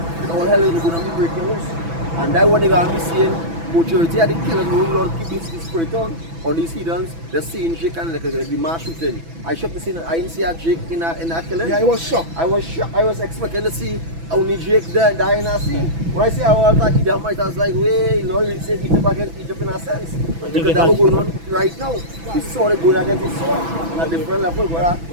And all hell is going to be breaking loose. And that's what they're going to be seeing. Majority of the killers who Lord keep this spirit on these heathens, they're seeing Jake and like the mass shooting. I shocked to see I didn't see a Jake in that killing. Yeah, I was shocked. I was expecting to see only Jake die in a scene. When I say I was like Edomite, I was like, wait, Lord really said Egypt against Egypt in a sense. Because that was going on right now. We saw it going against his sword on a different level. But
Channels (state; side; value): late; left; 6.0 ms